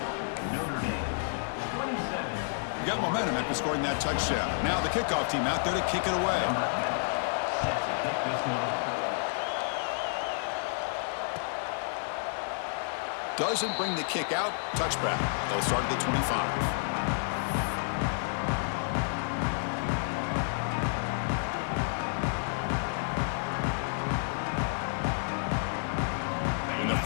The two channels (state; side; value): silent; right; digital silence